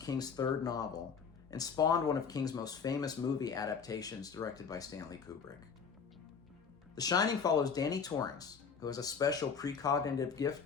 3rd novel and spawned one of King's most famous movie adaptations directed by Stanley Kubrick. The Shining follows Danny Torrance, who has a special precognitive gift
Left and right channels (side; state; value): right; quieter; 6.1 dB